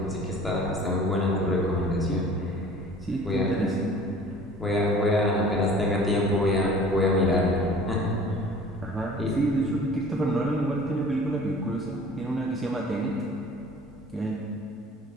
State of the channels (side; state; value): both; normal; correlation 0.47